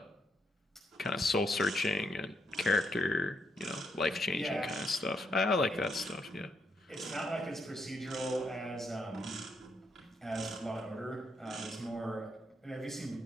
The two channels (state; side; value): normal; both; correlation 0.77